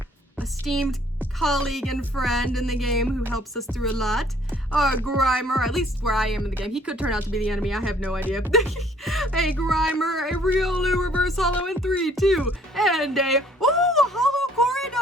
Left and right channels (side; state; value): both; normal; correlation 0.60